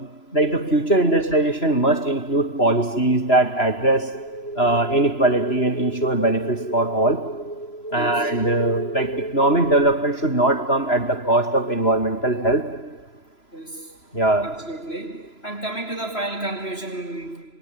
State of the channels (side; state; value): right; late; 3.0 ms